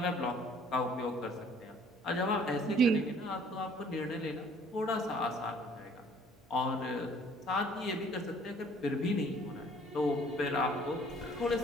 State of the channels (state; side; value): noise; right; hum, 29 dB below the sound